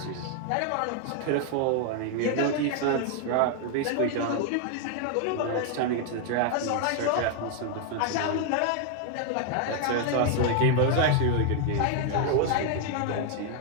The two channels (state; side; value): different; both; correlation 0.00